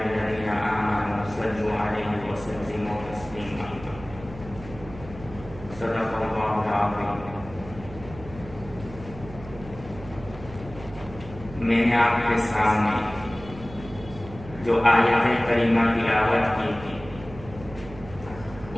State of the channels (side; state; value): right; noise; hum, 15 dB below the sound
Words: الذين آمنوا صلوا عليه وسلموا تسليما صدق الله العظيم. میں نے آپ کے سامنے جو آیت کریمہ تلاوت کی تھی